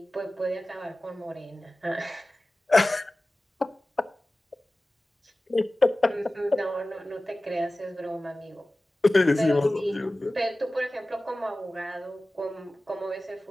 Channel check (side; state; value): both; normal; correlation 0.97